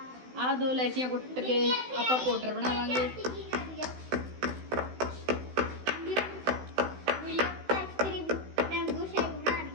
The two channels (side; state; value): left; late; 16 ms